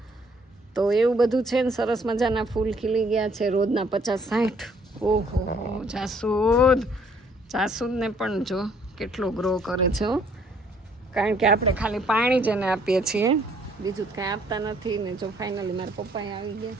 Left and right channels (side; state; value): both; normal; correlation 0.63